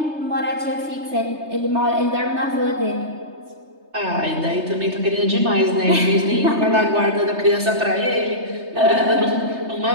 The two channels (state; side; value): late; left; 3.3 ms